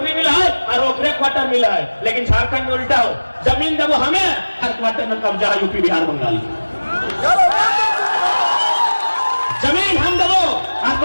मिला है और ओकरे क्वार्टर मिला है। लेकिन झारखंड में उल्टा हो, जमीन देवो हमें, हर क्वार्टर में कब्जा है यूपी बिहार बंगाल। जमीन हम देवो और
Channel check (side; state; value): both; inverted; correlation -1.00